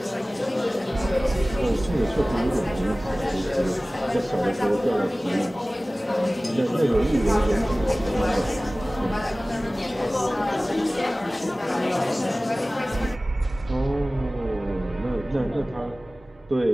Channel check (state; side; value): normal; both; correlation 0.98